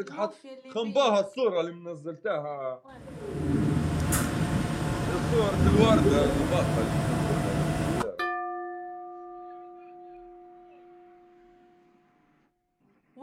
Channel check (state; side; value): identical; both; correlation 1.00